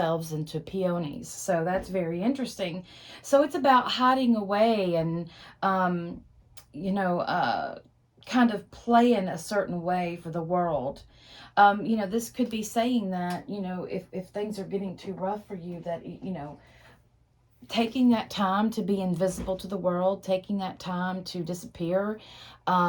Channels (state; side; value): identical; both; correlation 1.00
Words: into peonies. So that's very interesting. So it's about hiding away and, um, you know, uh, kind of playing a certain way for the world. This could be saying that, if things are getting too rough for you, that, taking that time to be invisible to the world, taking that time to disappear,